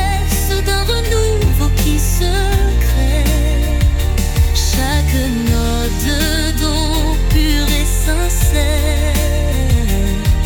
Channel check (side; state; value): both; identical; correlation 1.00